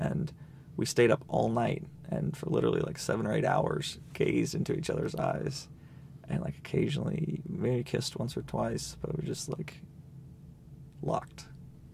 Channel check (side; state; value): both; identical; correlation 1.00